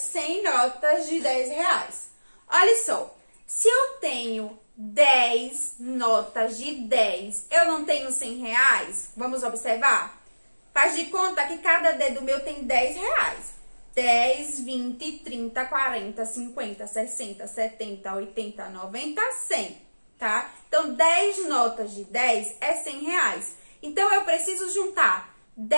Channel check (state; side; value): inverted; both; correlation -1.00